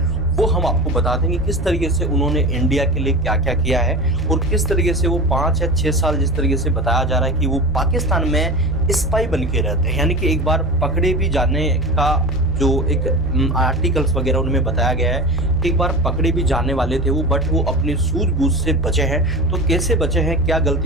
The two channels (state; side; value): normal; both; correlation 0.30